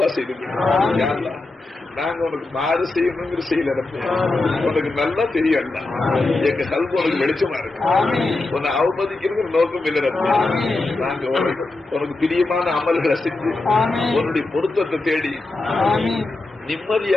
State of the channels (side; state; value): right; quieter; 3.1 dB